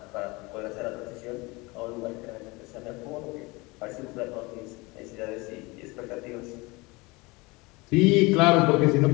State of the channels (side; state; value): right; quieter; 24.4 dB